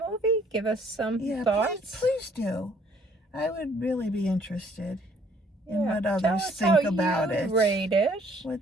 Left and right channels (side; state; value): both; normal; correlation 0.61